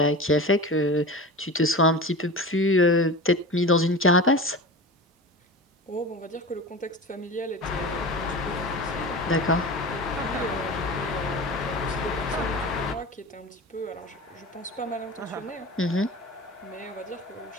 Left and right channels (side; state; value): both; normal; correlation 0.31